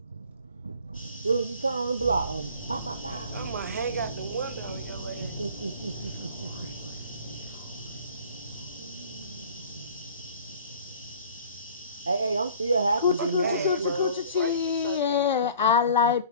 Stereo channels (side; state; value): both; inverted; correlation -0.47